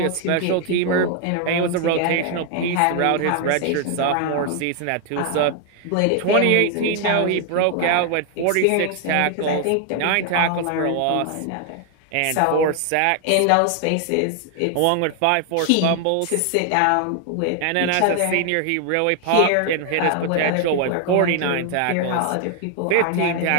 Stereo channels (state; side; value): different; both; correlation 0.00